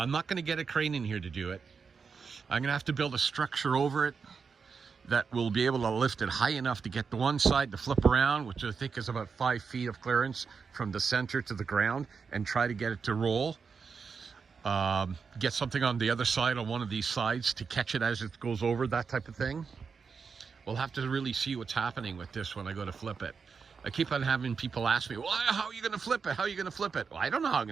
not going to get a crane in here to do it. I'm going to have to build a structure over it that will be able to lift it high enough to get the one side to flip around, which I think is about 5 feet of clearance from the center to the ground, and try to get it to roll. Get something on the other side, on one of these sides, to catch it as it goes over, that type of thing. We'll have to really see what's happening with this when I go to flip it. I keep on having people ask me, well, how are you going to flip it? How are you going to flip it? Well, I don't know how I'm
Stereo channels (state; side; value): quieter; left; 5.5 dB